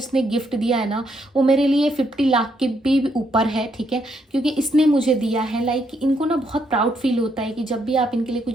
गिफ्ट दिया है ना, वो मेरे लिए 50 लाख के भी ऊपर है, ठीक है, क्योंकि इसने मुझे दिया है। लाइक इनको ना बहुत प्राउड फील होता है कि जब भी आप इनके लिए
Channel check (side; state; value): both; normal; correlation 0.75